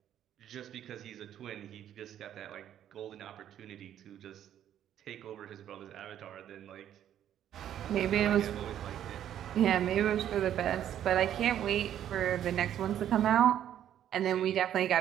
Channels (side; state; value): left; quieter; 10.7 dB